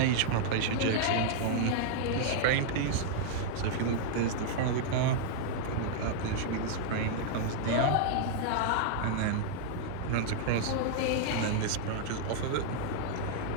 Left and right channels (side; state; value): both; different; correlation -0.01